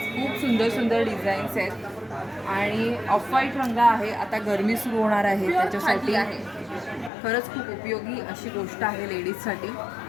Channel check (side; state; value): right; drops out; at 7.1 s